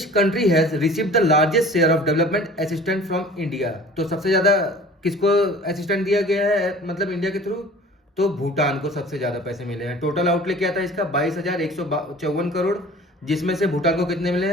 country has received the largest share of development assistant from India? तो सबसे ज्यादा किसको असिस्टेंट दिया गया है, मतलब इंडिया के थ्रू? तो भूटान को सबसे ज्यादा पैसे मिले हैं। टोटल आउटले क्या था इसका? 22,154 करोड़, जिसमें से भूटान को कितने मिले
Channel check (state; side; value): normal; both; correlation 0.45